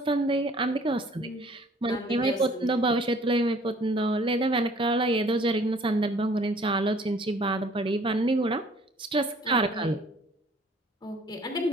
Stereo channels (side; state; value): both; normal; correlation 0.55